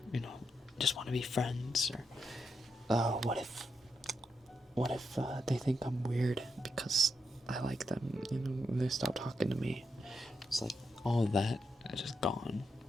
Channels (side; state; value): both; normal; correlation 0.83